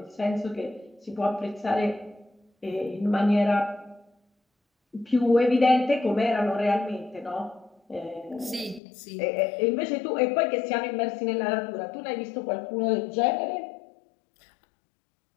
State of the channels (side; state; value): right; drops out; at 8.8 s